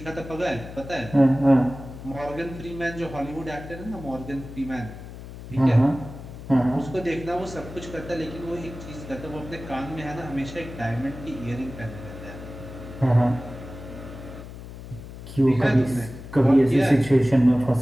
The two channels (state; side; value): noise; left; hum, 13 dB below the sound